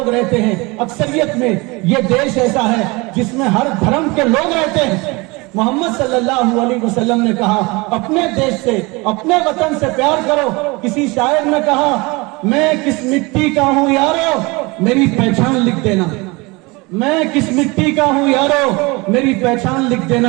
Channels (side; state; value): left; quieter; 25.3 dB